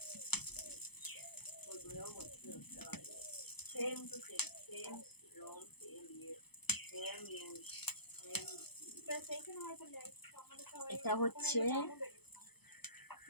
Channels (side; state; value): right; late; 0.98 ms